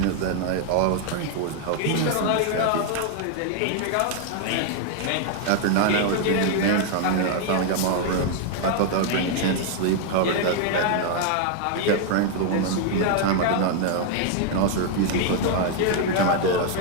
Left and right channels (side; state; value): both; different; correlation 0.00